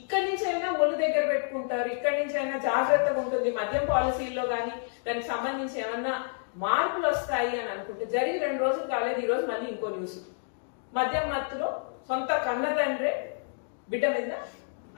నుంచి అయినా ఒళ్ళు దగ్గర పెట్టుకుంటారు, ఇక్కడి నుంచి అయినా జాగ్రత్తగా ఉంటుంది, మద్యం పాలసీల్లో కానీ దానికి సంబంధించి ఏమన్నా మార్పులు వస్తాయి అని అనుకుంటే, జరిగి 2 రోజులు కాలేదు, ఈ రోజు మళ్ళీ ఇంకో న్యూస్. మద్యం మత్తులో సొంత కన్న తండ్రే బిడ్డ మీద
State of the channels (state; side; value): silent; right; digital silence